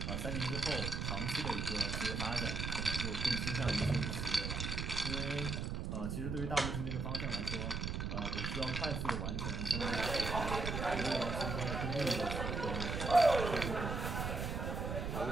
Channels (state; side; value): noise; right; rumble, 2 dB below the sound